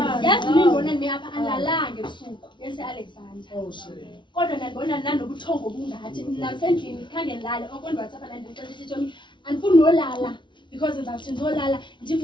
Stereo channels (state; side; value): late; right; 0.23 ms